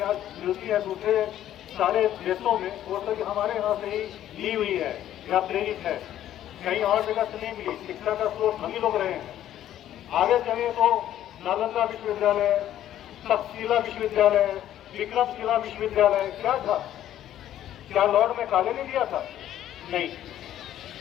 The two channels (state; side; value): quieter; right; 11.9 dB